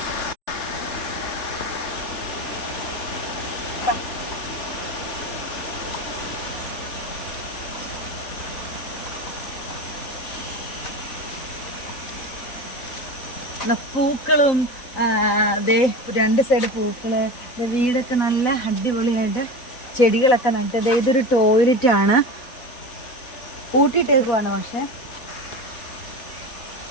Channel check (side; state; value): right; late; 4.0 ms